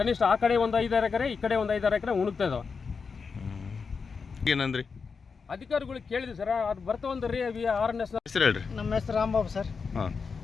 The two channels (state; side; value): quieter; right; 5.3 dB